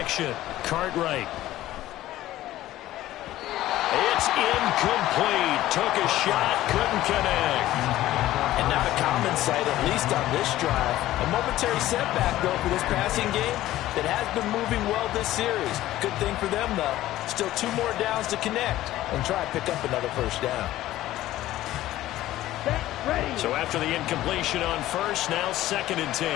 Cartwright. It's incomplete. Took a shot, couldn't connect. And not a common sight, at least on this drive. A momentary setback, though, for this passing game that has been moving well this series. Good thing for them, though. Still 2 more downs to connect and try to pick up another first down. So after the incompletion on first, now 2nd and 10.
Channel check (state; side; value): quieter; right; 14.9 dB